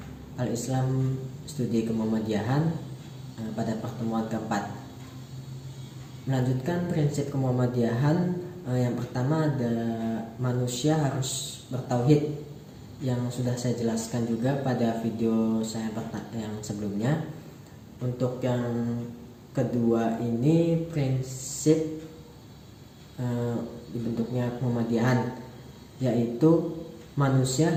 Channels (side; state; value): both; identical; correlation 1.00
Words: Al-Islam Studi Kemuhammadiyahan pada pertemuan keempat. Melanjutkan prinsip kemuhammadiyahan, yang pertama ada manusia harus bertauhid, yang sudah saya jelaskan juga pada video saya yang sebelumnya. Untuk yang kedua ini prinsip dibentuknya kemuhammadiyahan, yaitu manusia